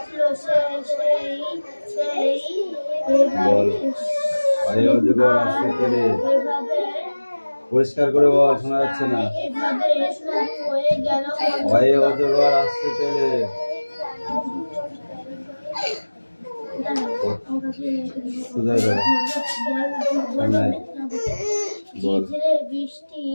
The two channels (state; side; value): inverted; both; correlation -1.00